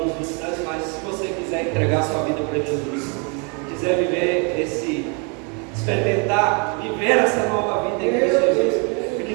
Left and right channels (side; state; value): left; quieter; 35.0 dB